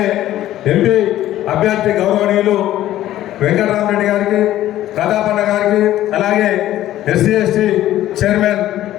ఎంపీ అభ్యర్థి గౌరవనీయులు వెంకటరామరెడ్డి గారికి, ప్రతాపన్న గారికి, అలాగే ఎస్సీ ఎస్టీ చైర్మన్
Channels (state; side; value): quieter; right; 13.6 dB